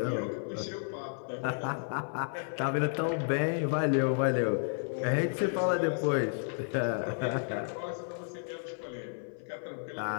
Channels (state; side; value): silent; right; 56 dB below the other